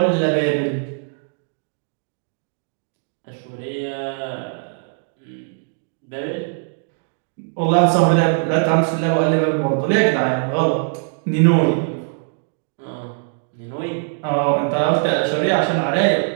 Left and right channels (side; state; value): left; silent; 60 dB below the other